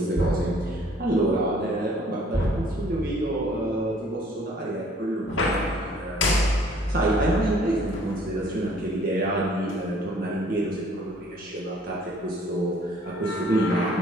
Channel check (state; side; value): normal; both; correlation 0.58